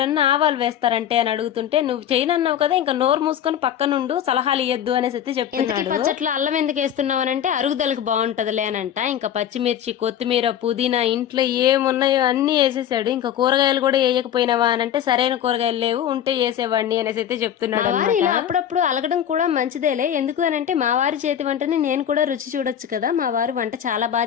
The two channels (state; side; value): quieter; right; 10.0 dB